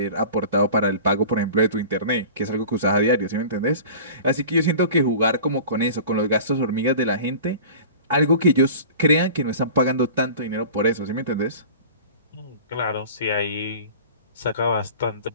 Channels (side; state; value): both; inverted; correlation -0.39